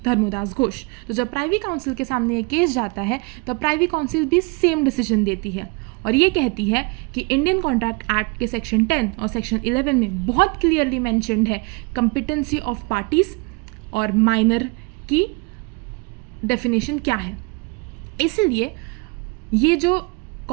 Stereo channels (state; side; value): quieter; left; 29.4 dB